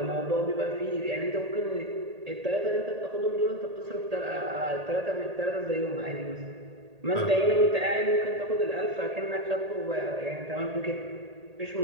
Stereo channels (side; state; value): left; late; 1.8 ms